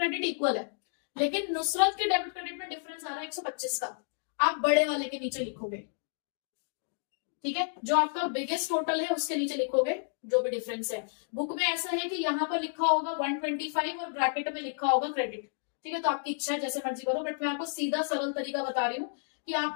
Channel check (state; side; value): silent; right; digital silence